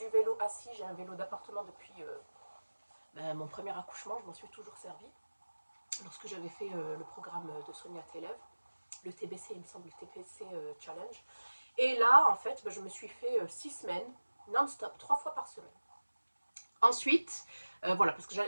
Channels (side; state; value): both; inverted; correlation -1.00